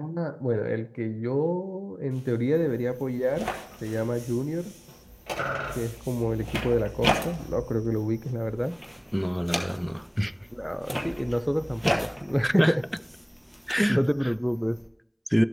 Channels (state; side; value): identical; both; correlation 1.00